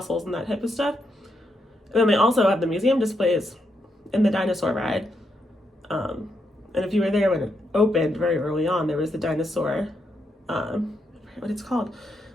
and that type of stuff. And then they also have the museum displays in the dinosaur ride. And if you were there when it opened very early on, there was the dinosaur, what it's called,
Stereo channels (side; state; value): both; normal; correlation 0.80